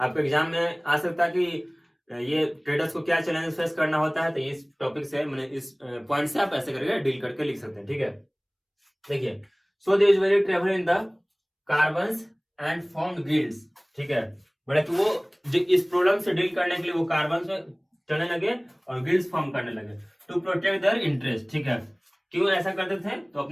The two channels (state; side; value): identical; both; correlation 1.00